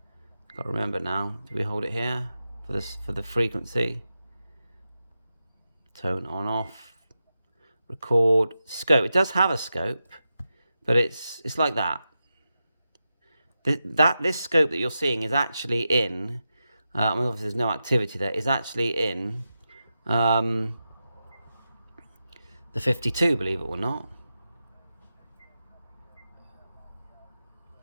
Got to remember now. Do we hold it here for this, for the frequency? Tone on, off. Record. Scope. It does have a scope, but it's like that. This scope that you're seeing is actually in. I mean, obviously there's no activity there. Is actually in the 52, believe it or not.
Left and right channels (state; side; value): inverted; both; correlation -0.90